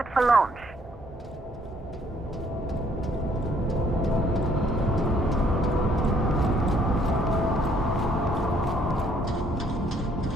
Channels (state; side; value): normal; both; correlation 0.65